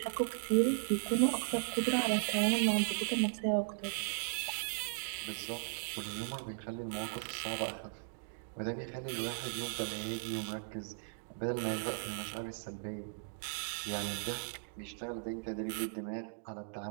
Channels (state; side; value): silent; left; digital silence